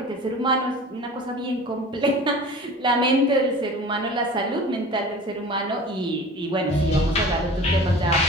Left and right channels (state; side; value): normal; both; correlation 0.40